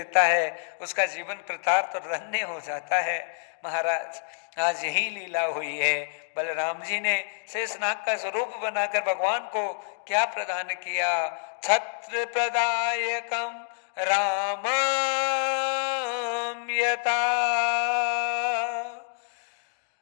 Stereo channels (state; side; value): silent; right; digital silence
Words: है, उसका जीवन कृतार्थ और धन्य हो जाता है। महाराज आज यही लीला हुई है, बलराम जी ने शेषनाग का स्वरूप बनाकर भगवान को क्या प्रदान किया, छत्र प्रदायकम रामम यथा।